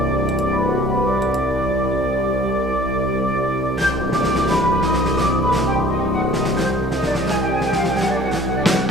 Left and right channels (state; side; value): normal; both; correlation 0.52